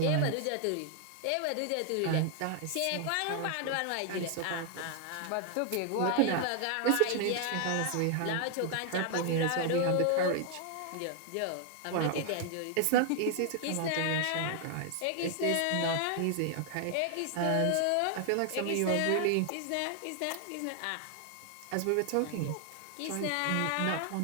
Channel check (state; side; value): different; both; correlation 0.00